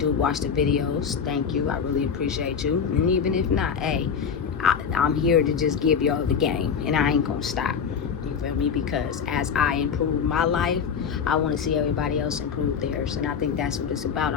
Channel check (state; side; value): quieter; right; 6.7 dB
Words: watch the videos, thank you. I really appreciate you. And even if not, hey, I'm here to just give y'all the game, and I ain't gonna stop. You feel me? Because as I improve my life, I want to see everybody else improve theirs, and I think that's what it's about.